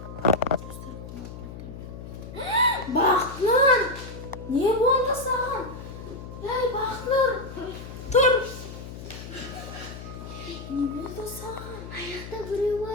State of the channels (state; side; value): noise; left; hum, 11 dB below the sound